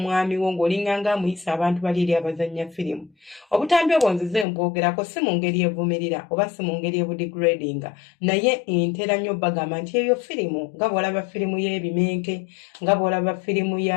wo ng'olinga nga amuyisa abantu bali eri abazannya firimu. Obutambi obwo nzize mbwogerako si mu ngeri evumirira oba si mu ngeri ebudegradinga, naye ntera nnyo bagamba nti eyo firimu nga bw'olaba firimu y'ebimenke, nga bw'olaba firimu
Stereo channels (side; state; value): right; drops out; at 4.5 s